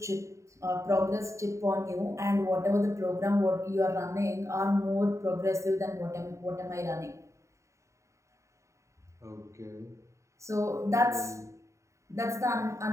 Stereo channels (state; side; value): late; left; 0.14 ms